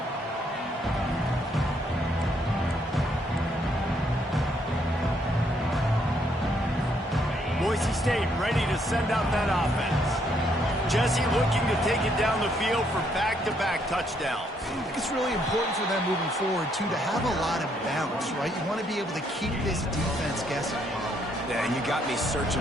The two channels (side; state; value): both; normal; correlation 0.71